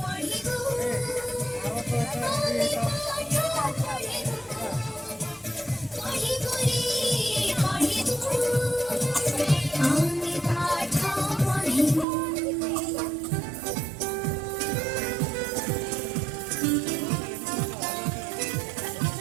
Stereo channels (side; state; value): left; drops out; at 12.1 s